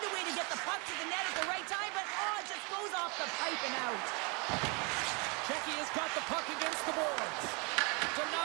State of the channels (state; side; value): quieter; left; 31.5 dB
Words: a way to get the puck to the net at the right time, but it just goes off the pipe and out. Checky has got the puck against the boards.